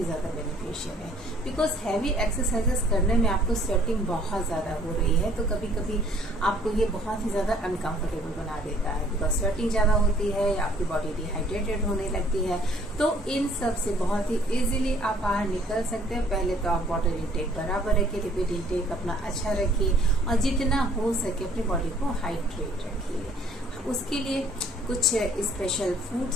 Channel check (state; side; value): normal; both; correlation 0.59